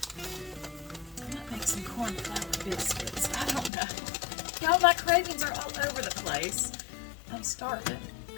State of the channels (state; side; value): drops out; right; at 3.7 s